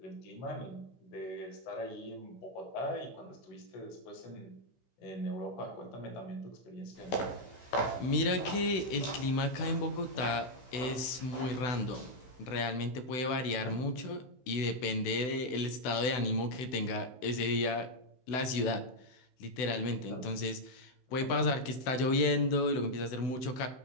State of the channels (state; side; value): late; right; 16 ms